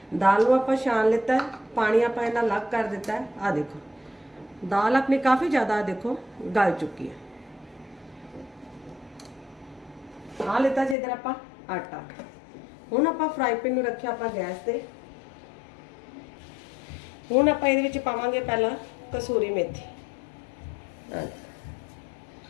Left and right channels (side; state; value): right; drops out; at 11.0 s